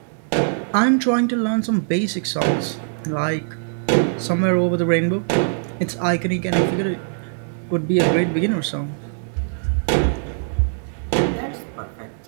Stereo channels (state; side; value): silent; left; 64 dB below the other